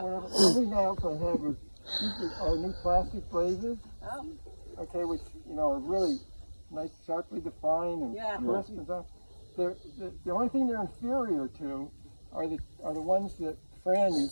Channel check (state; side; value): inverted; both; correlation -1.00